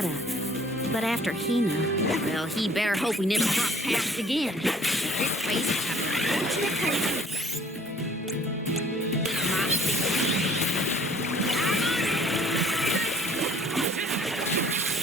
but after Hina, well, he better hope we never cross paths again. This place will have an unfortunate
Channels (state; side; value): normal; both; correlation 0.56